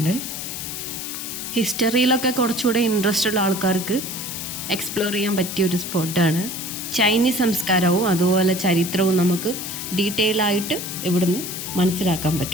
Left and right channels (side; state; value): left; noise; hiss, 6 dB below the sound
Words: ഹിസ്റ്ററിയിലൊക്കെ കുറച്ചുകൂടെ ഇൻട്രസ്റ്റ് ഉള്ള ആൾക്കാർക്ക് എക്സ്പ്ലോർ ചെയ്യാൻ പറ്റിയ ഒരു സ്പോട്ടാണ്. ചൈനീസ് സംസ്കാരവും അതുപോലെ ചരിത്രവും നമുക്ക് ഡീറ്റെയിൽ ആയിട്ട് ഇവിടുന്ന് മനസ്സിലാക്കാൻ